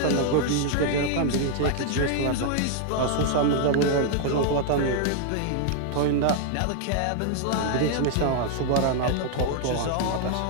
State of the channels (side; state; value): both; different; correlation 0.00